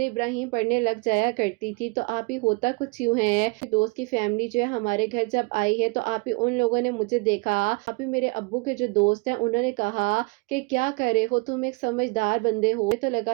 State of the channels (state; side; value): quieter; left; 28.6 dB